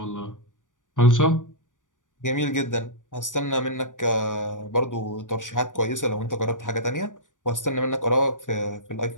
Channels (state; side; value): late; right; 0.87 ms